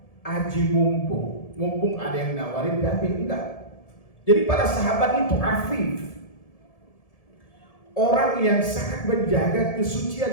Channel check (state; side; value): late; right; 1.7 ms